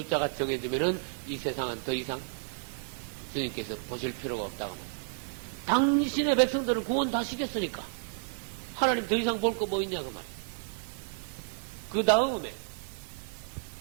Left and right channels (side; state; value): left; silent; digital silence